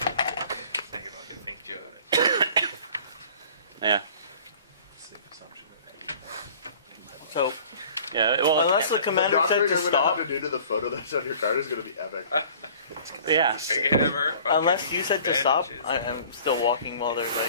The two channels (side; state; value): both; inverted; correlation -0.49